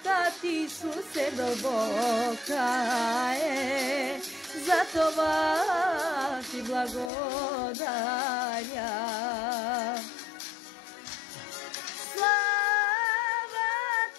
ти, Исусе, дълбока е, за това ти благодаря.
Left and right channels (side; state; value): right; drops out; at 7.1 s